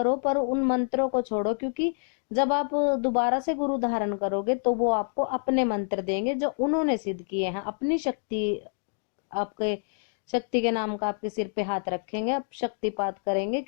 पर उन मंत्रों को छोड़ो, क्योंकि जब आप दोबारा से गुरु धारण करोगे तो वो आपको अपने मंत्र देंगे जो उन्होंने सिद्ध किए हैं, अपनी शक्ति, आपके शक्ति के नाम का आपके सिर पे हाथ रखेंगे, आप शक्तिपात करेंगे,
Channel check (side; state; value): right; silent; digital silence